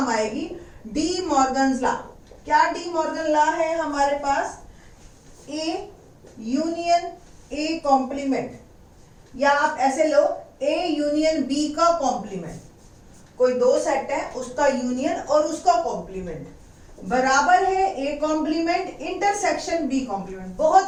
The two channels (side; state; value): both; identical; correlation 1.00